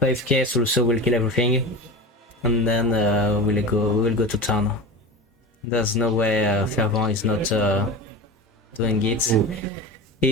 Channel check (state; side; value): normal; both; correlation 0.28